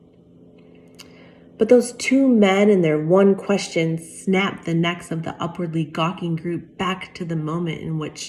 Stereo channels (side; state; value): both; identical; correlation 1.00